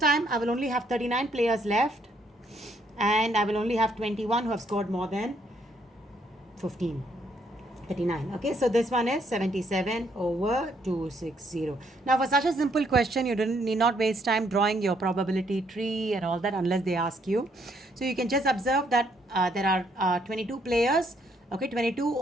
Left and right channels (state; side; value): normal; both; correlation 0.70